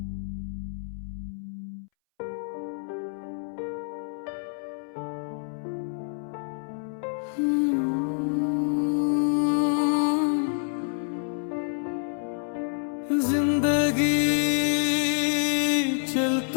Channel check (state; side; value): silent; right; 60 dB below the other